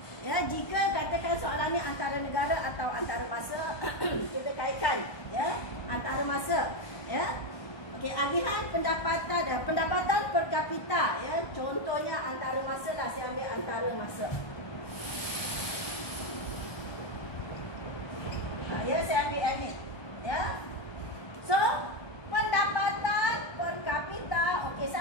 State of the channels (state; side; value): late; right; 1.2 ms